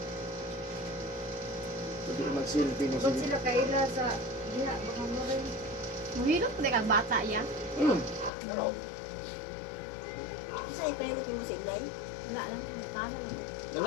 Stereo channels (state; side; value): drops out; right; at 8.3 s